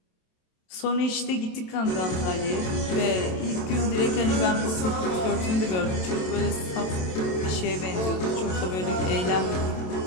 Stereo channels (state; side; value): late; right; 27 ms